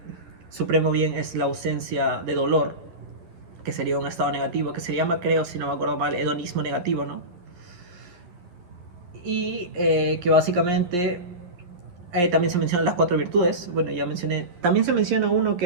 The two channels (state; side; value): late; left; 11 ms